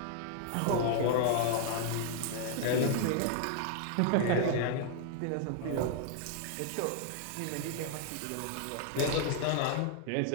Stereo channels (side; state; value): both; different; correlation 0.00